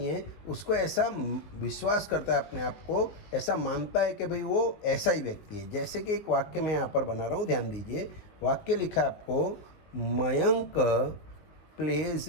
है, उसको ऐसा विश्वास करता है अपने आप को, ऐसा मानता है कि भाई वो ऐसा ही व्यक्ति है। जैसे कि एक वाक्य मैं यहाँ पर बना रहा हूँ, ध्यान दीजिए। वाक्य लिखा है आपको, Mayank pledge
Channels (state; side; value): late; right; 19 ms